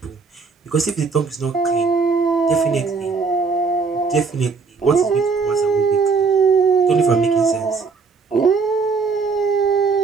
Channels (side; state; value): left; quieter; 4.8 dB